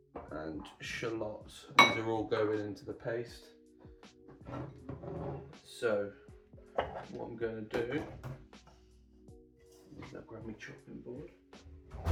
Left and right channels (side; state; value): both; identical; correlation 1.00